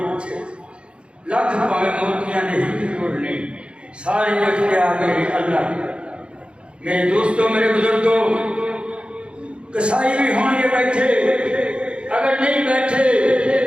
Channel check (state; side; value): late; left; 0.057 ms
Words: پوچھے لکھ پاوے موتیاں نہیں توڑنے سارے اختیار میرے اللہ میرے دوستوں میرے بزرگوں کسائی بھی ہوں گے بیٹھے اگر نہیں بیٹھے